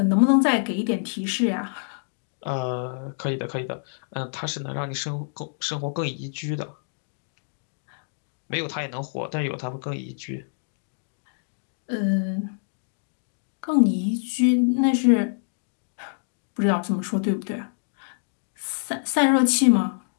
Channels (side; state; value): right; silent; digital silence